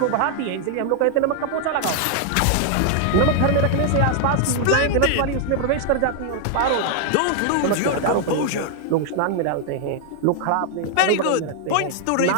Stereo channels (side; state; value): both; different; correlation 0.00